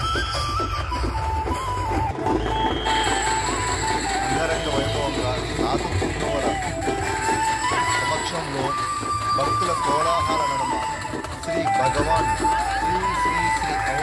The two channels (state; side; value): identical; both; correlation 1.00